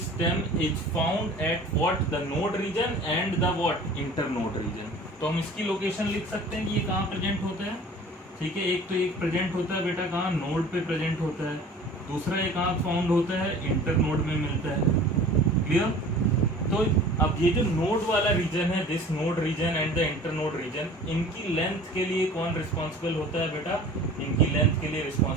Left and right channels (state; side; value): normal; both; correlation 0.44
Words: is found at what? The node region and the what? Internode region. तो हम इसकी लोकेशन लिख सकते हैं कि ये कहाँ प्रेजेंट होता है। ठीक है, एक तो एक प्रेजेंट होता है बेटा कहाँ? नोड पे प्रेजेंट होता है। दूसरा एक कहाँ फाउंड होता है? इंटर नोड में मिलता है। क्लियर? तो अब ये जो नोड वाला रीजन है, this node region and the internode region, इनकी लेंथ के लिए कौन रिस्पॉन्सिबल होता है बेटा? इनकी लेंथ के लिए